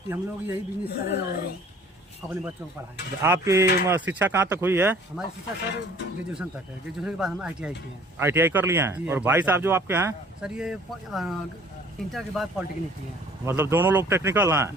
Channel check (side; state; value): both; normal; correlation 0.53